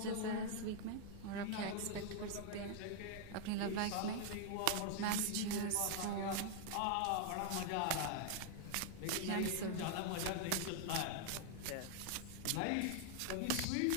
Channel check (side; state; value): both; different; correlation 0.00